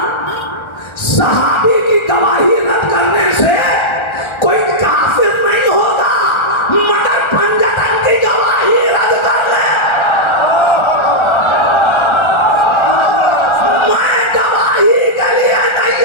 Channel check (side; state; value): right; late; 1.3 ms